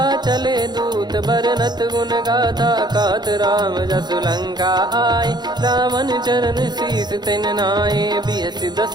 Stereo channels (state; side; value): late; left; 0.21 ms